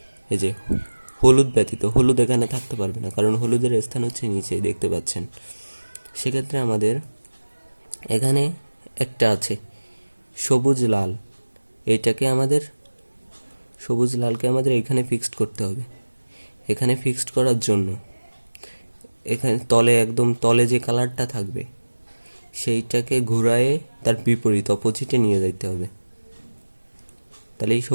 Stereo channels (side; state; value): both; inverted; correlation -1.00